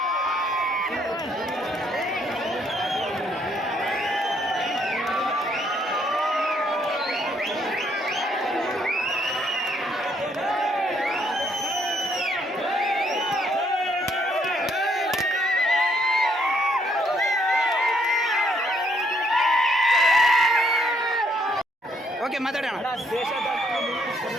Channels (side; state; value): both; normal; correlation 0.69